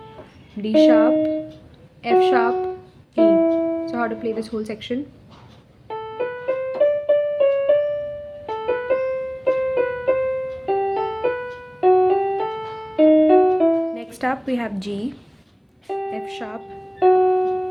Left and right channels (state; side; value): identical; both; correlation 1.00